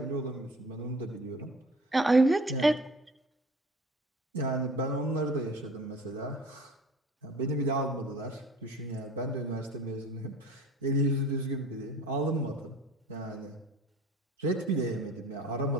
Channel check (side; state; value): both; normal; correlation 0.44